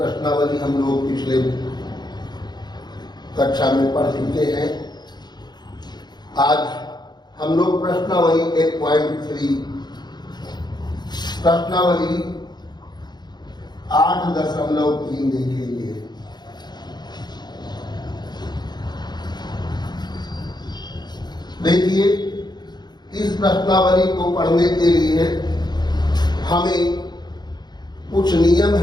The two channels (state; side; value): late; right; 0.21 ms